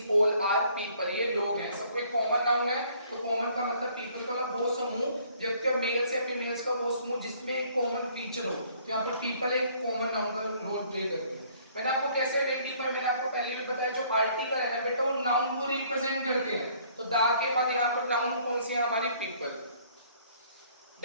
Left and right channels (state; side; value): inverted; both; correlation -0.60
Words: ऑल आर पीपल, ये लोग हैं, सबको एक कॉमन नाउन है। तो कॉमन का मतलब पीपल का मतलब वो समूह, व्यक्ति मेल्स या फीमेल्स का वो समूह जिसमें एक कॉमन फीचर हो। तो यहाँ पर पीपल एक कॉमन नाउन का रोल प्ले करती है। मैंने आपको कैसे आइडेंटिफाई, मैंने आपको पहले भी बताया, जो आर्टिकल है ना बेटा वो नाउन को रिप्रेजेंट करते हैं। तो दा के बाद यहाँ पर नाउन कौन सी है हमारी, पीपल।